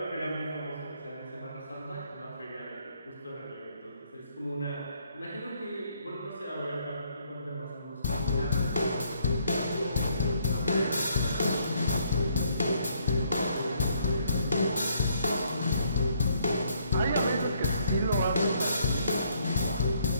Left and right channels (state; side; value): inverted; both; correlation -0.69